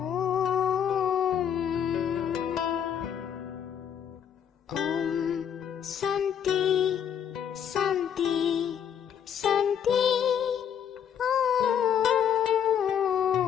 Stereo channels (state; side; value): quieter; right; 8.6 dB